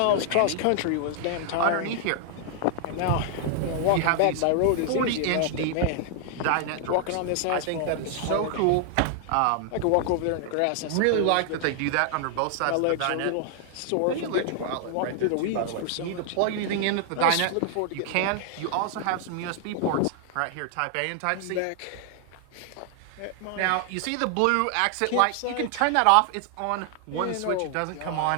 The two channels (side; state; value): both; different; correlation 0.00